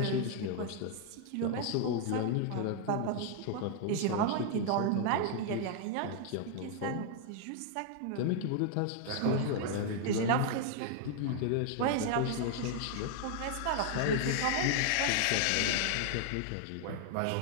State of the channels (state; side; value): different; both; correlation 0.00